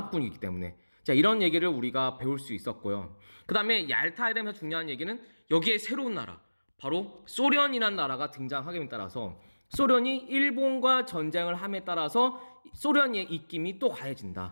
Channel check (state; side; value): inverted; both; correlation -1.00